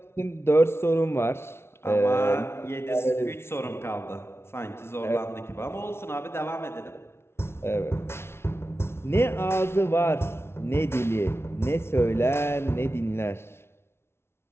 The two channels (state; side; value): late; right; 0.12 ms